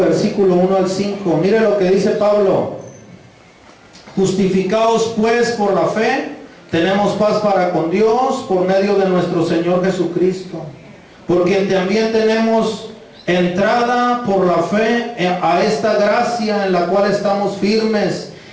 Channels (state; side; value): identical; both; correlation 1.00